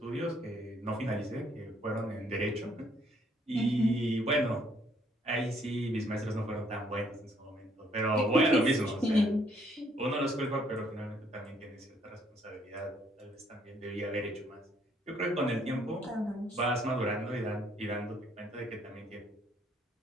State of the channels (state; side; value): normal; both; correlation 0.66